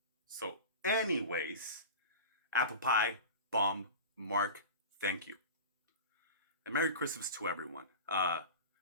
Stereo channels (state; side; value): inverted; both; correlation -0.31